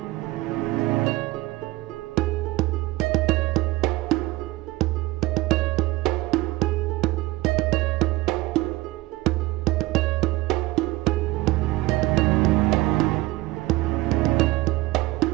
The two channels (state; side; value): quieter; left; 19.1 dB